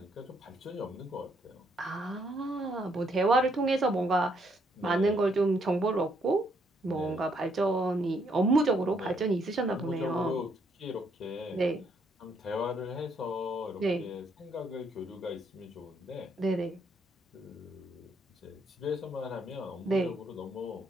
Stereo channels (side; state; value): both; normal; correlation 0.72